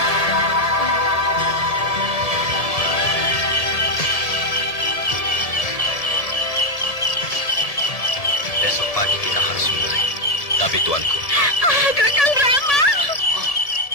Besok pagi kita harus mulai. Tapi tuanku. Kakang Rama.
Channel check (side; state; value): right; late; 1.7 ms